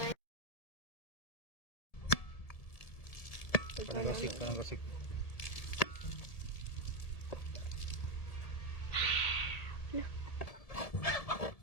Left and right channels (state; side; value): late; right; 1.7 ms